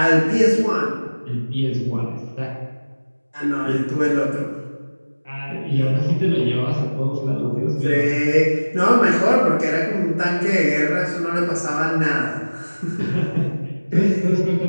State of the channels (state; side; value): inverted; both; correlation -1.00